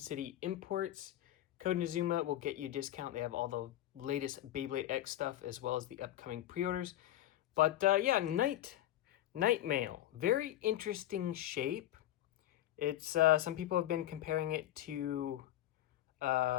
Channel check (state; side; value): quieter; right; 13.7 dB